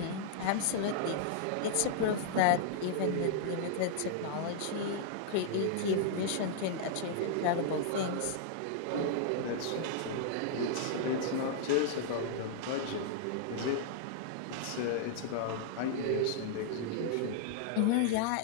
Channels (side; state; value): both; different; correlation -0.01